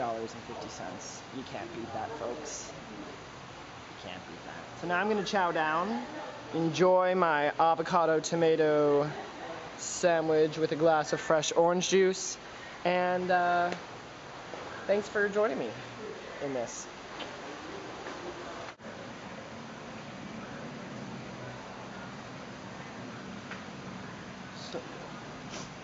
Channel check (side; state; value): both; identical; correlation 1.00